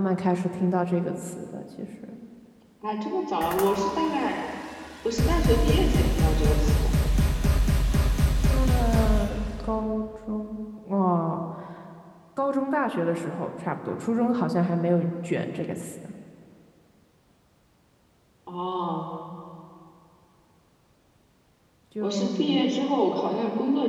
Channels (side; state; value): both; identical; correlation 1.00